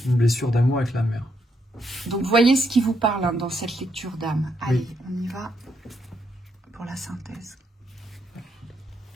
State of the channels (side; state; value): both; normal; correlation 0.77